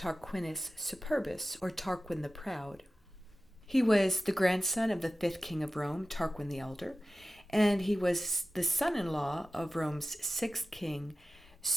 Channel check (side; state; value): both; normal; correlation 0.95